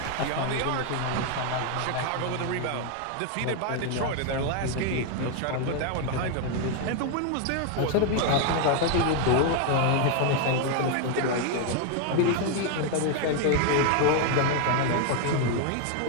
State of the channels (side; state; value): both; different; correlation 0.01